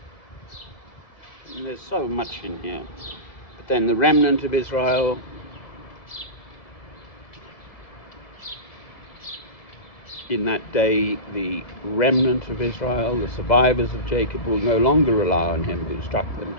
And there's so much in here. But then the remnant of Israel, in that day, the remnant of Israel, the survivors of Jacob, will no longer rely on him who struck them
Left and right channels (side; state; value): right; late; 2.0 ms